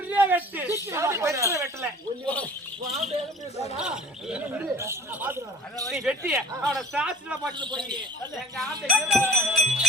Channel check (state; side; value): normal; both; correlation 0.44